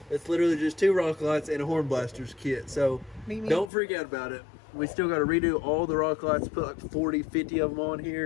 It's literally just 2 rock lights and a horn blasters kit, so don't freak out about it. We still got to redo all the rock lights, put like 40, 50 of them on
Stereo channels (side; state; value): right; drops out; at 3.7 s